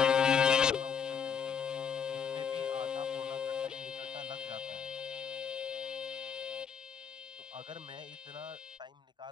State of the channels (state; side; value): quieter; right; 7.0 dB